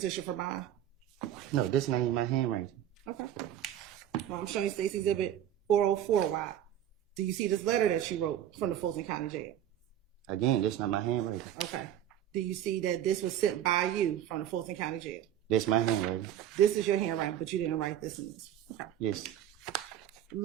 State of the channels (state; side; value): quieter; left; 11.1 dB